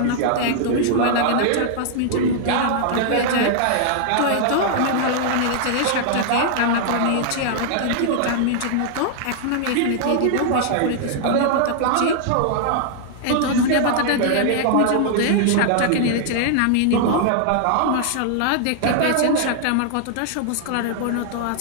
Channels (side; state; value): both; different; correlation -0.01